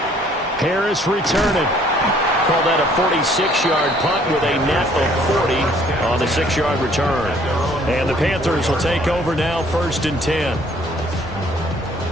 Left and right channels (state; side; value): normal; both; correlation 0.60